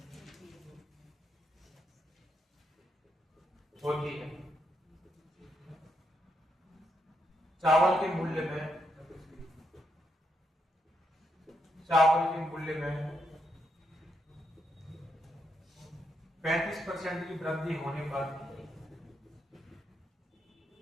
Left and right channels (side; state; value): both; normal; correlation 0.80